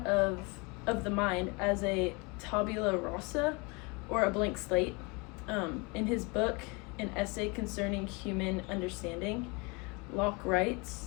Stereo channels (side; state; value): right; quieter; 28.9 dB